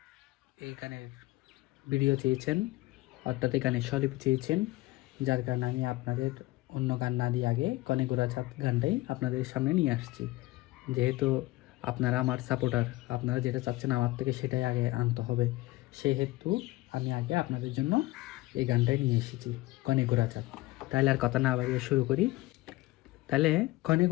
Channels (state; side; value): quieter; right; 19.4 dB